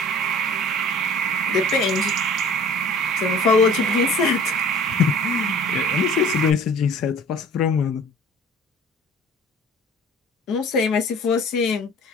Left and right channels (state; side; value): normal; both; correlation 0.47